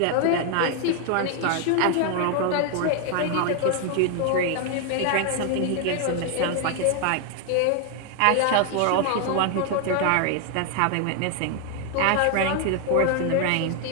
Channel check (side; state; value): both; different; correlation 0.00